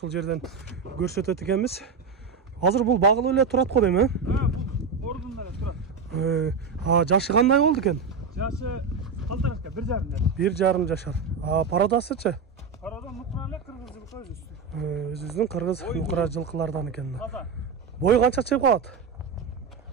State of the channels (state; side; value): quieter; left; 5.2 dB